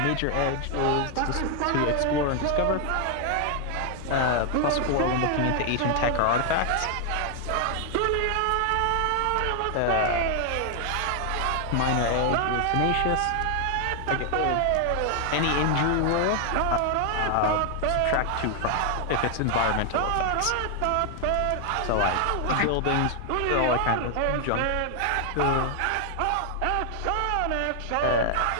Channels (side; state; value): both; different; correlation 0.00